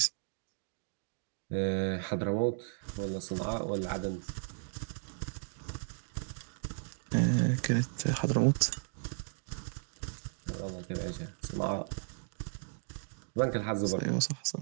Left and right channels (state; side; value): silent; left; digital silence